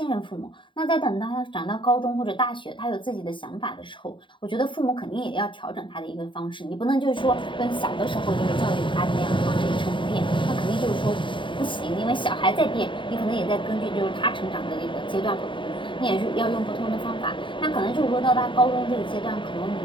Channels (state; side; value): late; right; 0.24 ms